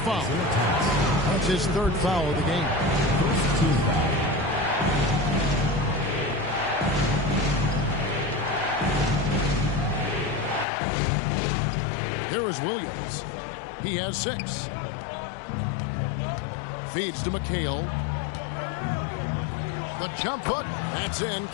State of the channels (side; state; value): right; drops out; at 10.7 s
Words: That's his 3rd foul of the game. First team foul. Here is Williams. He has 6. Feeds to McHale. The jump hook. That's in.